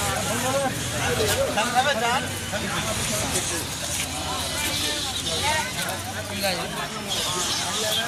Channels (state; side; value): identical; both; correlation 1.00